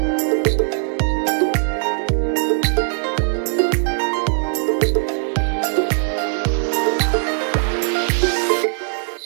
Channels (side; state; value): left; silent; digital silence